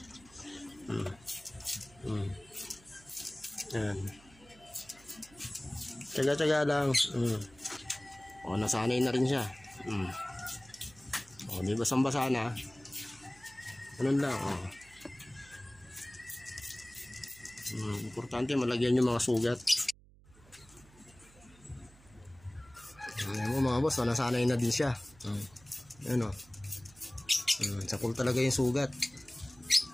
Yan. Tsaga-tsaga lang. O, nasanay na rin siya. O, di basang-basa na. Ganun lang, o. Importante malagyan yung mga sugat. Ayan mo mga boss, nasanay na din siya. Ayan o. Sakol talaga yung sugat.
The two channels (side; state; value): right; noise; hum, 25 dB below the sound